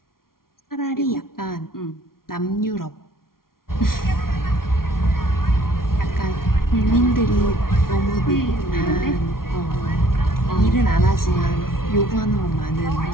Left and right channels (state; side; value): late; right; 0.93 ms